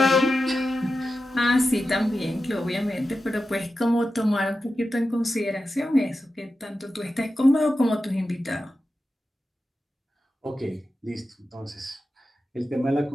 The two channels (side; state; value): both; normal; correlation 0.92